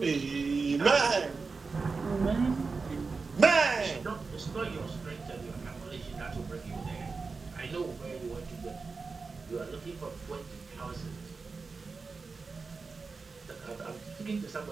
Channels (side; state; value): left; quieter; 4.4 dB